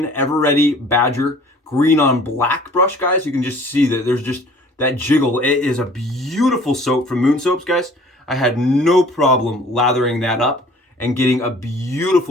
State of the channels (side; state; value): both; normal; correlation 0.51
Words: Badger green on black brush, guys. You can just see that there's just that jiggle. It is a beautiful soap from Moon Soaps, guys. I had no problem lathering that up and getting a